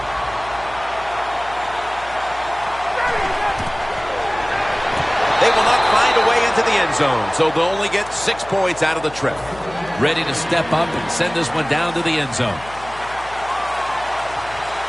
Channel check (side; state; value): left; noise; hum, 19 dB below the sound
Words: They will not find a way into the end zone, so they'll only get 6 points out of the trip. Ready to step up and send this one down to the end zone.